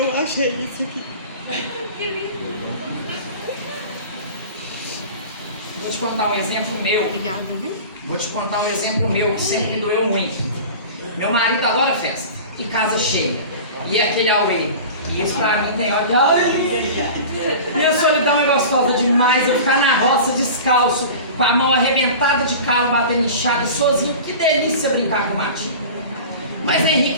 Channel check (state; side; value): inverted; both; correlation -0.36